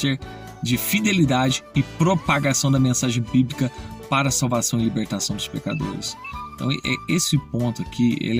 de fidelidade e propagação da mensagem bíblica para a salvação e libertação dos pecadores. Então, esse ponto aqui,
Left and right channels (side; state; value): both; identical; correlation 1.00